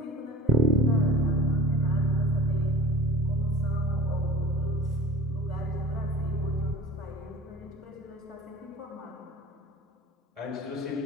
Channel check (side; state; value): both; normal; correlation 0.37